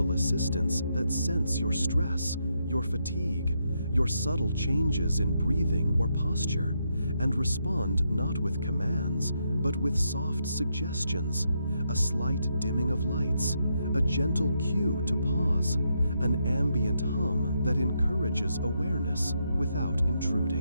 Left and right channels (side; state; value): both; inverted; correlation -0.80